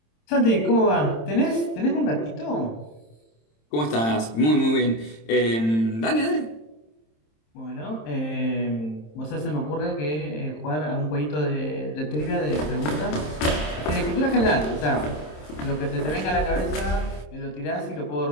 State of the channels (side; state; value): right; late; 27 ms